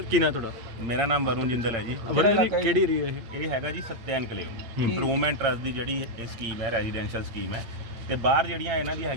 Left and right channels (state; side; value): late; left; 8.7 ms